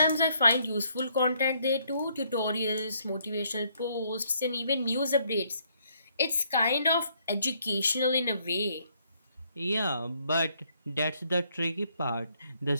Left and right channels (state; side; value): inverted; both; correlation -0.69